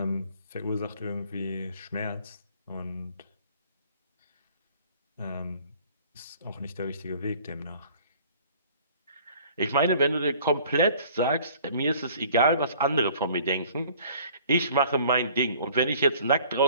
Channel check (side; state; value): both; inverted; correlation -0.52